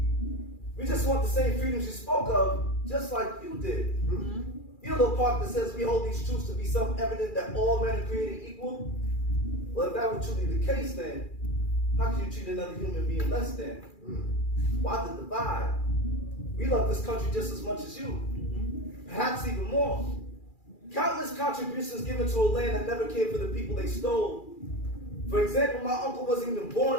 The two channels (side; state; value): right; late; 2.4 ms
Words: We just want the same freedoms you spoke of, just like you did. You know the part that says we hold these truths to be self-evident that all men are created equal? Well, if that were truly the case, then how could you treat another human being less than? Why the divide? We love this country just as much as you, perhaps even more. Countless contributions given to a land that never cared for the people they stole. For example, my uncle wasn't even